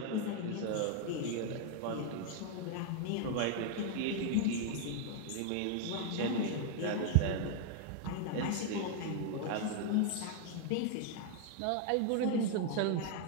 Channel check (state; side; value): different; both; correlation 0.00